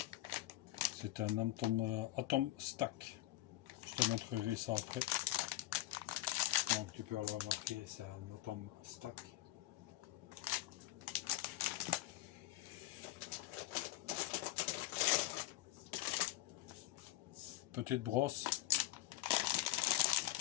C'est un Atomstack. Je te montrerai ça après. Donc tu peux le remarquer, c'est un Atomstack. Petite brosse.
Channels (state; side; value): quieter; right; 16.5 dB